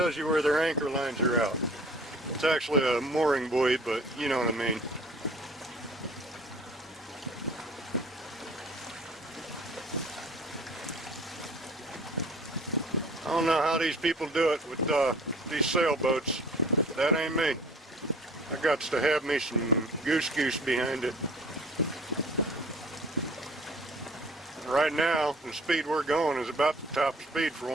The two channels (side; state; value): both; normal; correlation 0.49